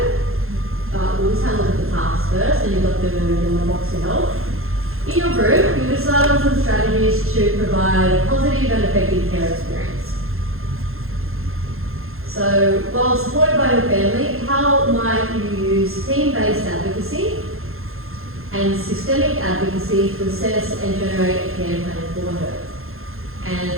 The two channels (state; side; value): late; left; 0.61 ms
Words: but we'll just have a look at the task first, and you've got them in the box to help. In your group, you decide on some strategies to provide a positive and effective care experience. So, while supported by your family, how might you use team-based advocacy and systemic advocacy to assess and generate a care plan for her?